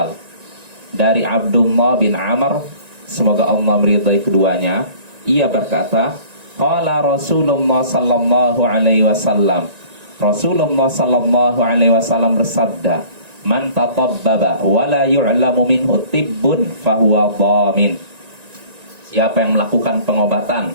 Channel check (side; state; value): left; late; 1.9 ms